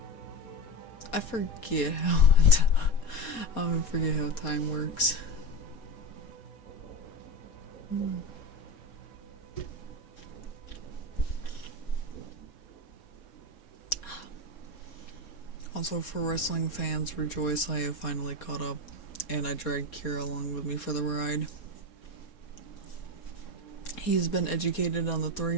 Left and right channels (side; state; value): right; late; 4.2 ms